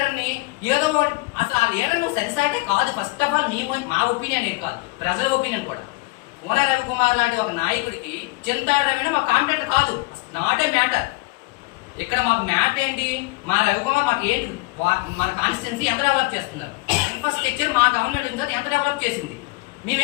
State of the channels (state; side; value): quieter; right; 24.7 dB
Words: ఏదో ఒకటి, అసలు ఆ లీడర్ నువ్వు సరిసాటే కాదు. ఫస్ట్ ఆఫ్ ఆల్ మా ఒపీనియన్ ఏం కాదు, ప్రజల ఒపీనియన్ కూడా. కోన రవికుమార్ లాంటి ఒక నాయకుడికి చింతారెడ్డి మా కాంపిటేటర్ కాదు, నాట్ ఏ మ్యాటర్. ఇక్కడ మాకు మ్యాట్ ఏంటి, మా రవికుమార్ మాకు ఏంటి, మన కాన్స్టిట్యున్సీ ఎంత డెవలప్ చేస్తున్నారు, ఇన్ఫ్రాస్ట్రక్చర్ మా గవర్నమెంట్ ఉంది ఎంత డెవలప్ చేసింది.